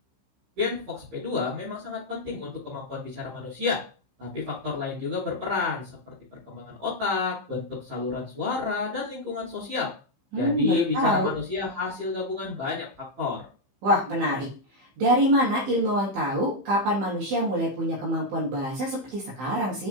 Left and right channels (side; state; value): left; late; 15 ms